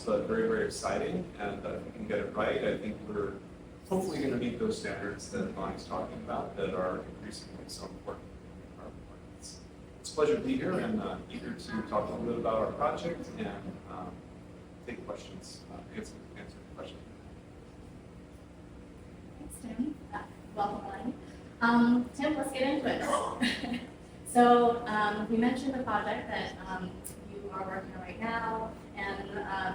but very, very exciting. And if we can get it right, I think we're hopefully going to meet those standards that Bonnie's talking about that are increasingly so important in carbon markets. It's a pleasure to be here and eager to talk a little bit about our project and take questions, answer questions. Thanks, Tim. Welcome, Elaine. Tim, let's get into it. So we mentioned the project that you are working on right now,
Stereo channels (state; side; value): identical; both; correlation 1.00